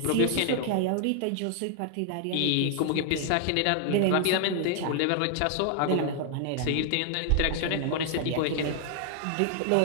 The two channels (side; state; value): both; different; correlation 0.00